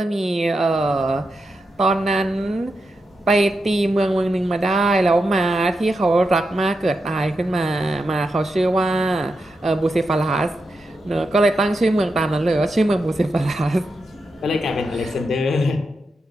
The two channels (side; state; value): both; normal; correlation 0.87